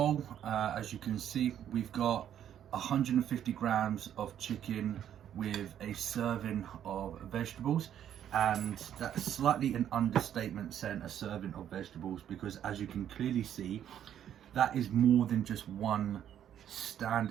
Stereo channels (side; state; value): left; quieter; 10.1 dB